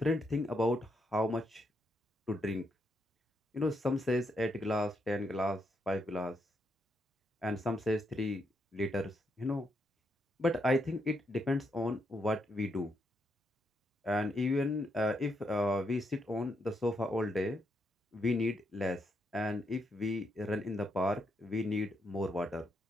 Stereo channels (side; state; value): both; normal; correlation 0.79